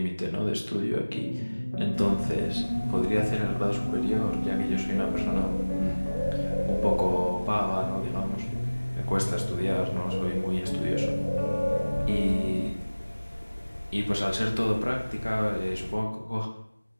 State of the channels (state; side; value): inverted; both; correlation -1.00